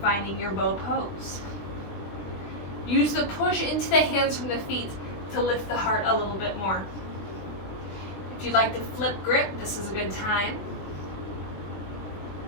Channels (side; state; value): right; late; 20 ms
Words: finding your bow pose. Use the push into the hands from the feet to lift the heart a little bit more. If If you'd like to flip grip, this is a good time.